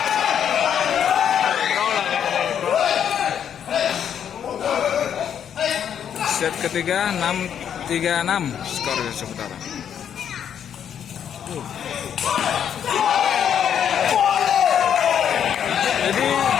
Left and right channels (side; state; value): right; quieter; 8.8 dB